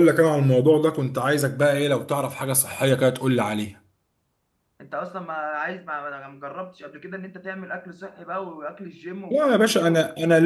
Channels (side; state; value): both; identical; correlation 1.00